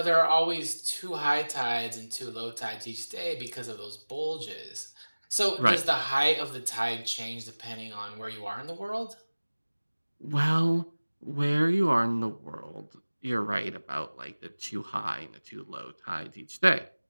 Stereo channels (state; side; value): inverted; both; correlation -1.00